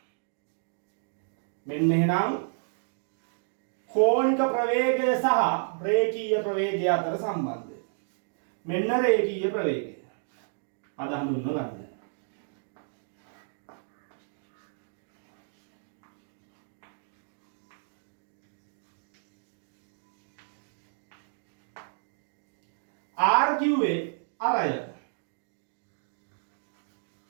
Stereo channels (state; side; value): silent; left; digital silence